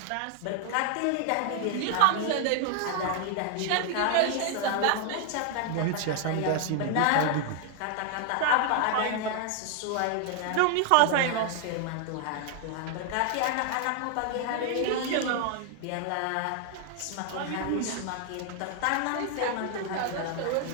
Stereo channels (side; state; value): both; different; correlation 0.00